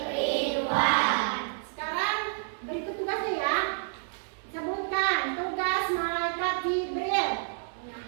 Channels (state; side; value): silent; left; digital silence